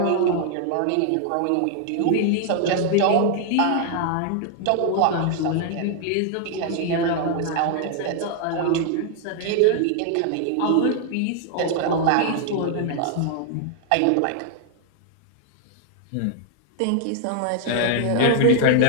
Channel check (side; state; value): both; different; correlation 0.00